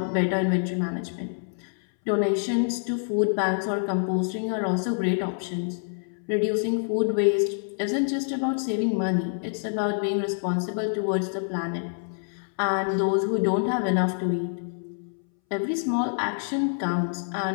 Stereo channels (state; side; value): silent; right; 61 dB below the other